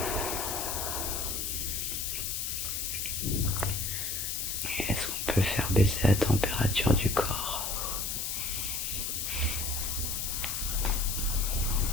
peut faire baisser la température du corps.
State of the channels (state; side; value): noise; left; hiss, 1 dB below the sound